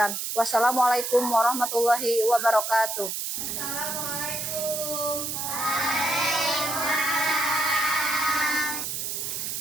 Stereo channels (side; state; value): right; noise; hiss, 3 dB below the sound